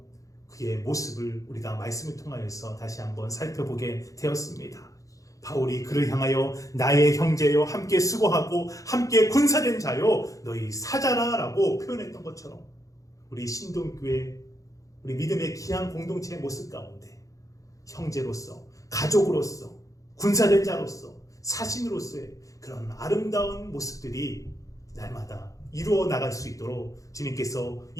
그의 모습을 우리가 말씀을 통하여서 다시 한번 살펴보게 되었습니다. 바울이 그를 향하여 나의 형제여 함께 수고하고 함께 군사된 자요 너희 사자라라고 표현했던 것처럼 우리 신동교회 우리 믿음의 귀한 공동체의 모습 가운데 형제로서 가족으로서 군사된 자로서 사신으로서의 그런 아름다운 모습들이 날마다 이루어 나갈 수 있도록 주님께서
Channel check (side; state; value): right; late; 0.16 ms